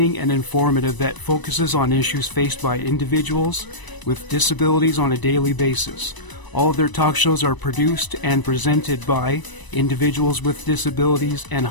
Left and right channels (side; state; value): right; late; 1.0 ms